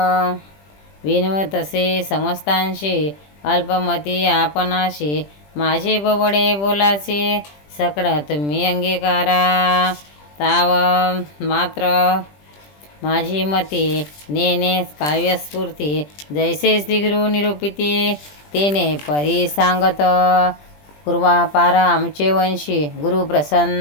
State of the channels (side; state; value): right; late; 20 ms